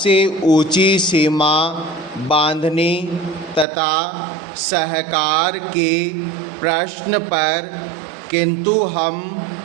ऊंची सीमा बांधने तथा सहकार के प्रश्न पर, किंतु हम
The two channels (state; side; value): drops out; left; at 3.7 s